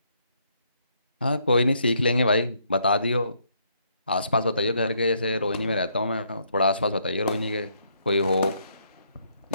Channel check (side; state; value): both; inverted; correlation -0.72